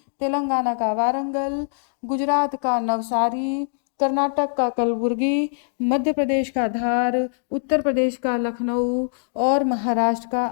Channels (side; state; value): right; silent; digital silence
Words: तेलंगाना का वारंगल, गुजरात का नवसारी, कर्नाटक का कलबुर्गी, मध्य प्रदेश का धार, उत्तर प्रदेश का लखनऊ और महाराष्ट्र का